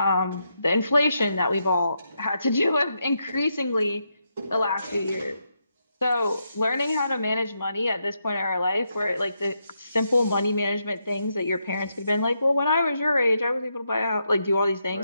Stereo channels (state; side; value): inverted; both; correlation -0.82